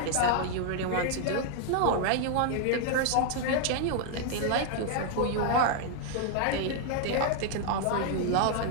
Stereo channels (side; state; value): both; different; correlation 0.00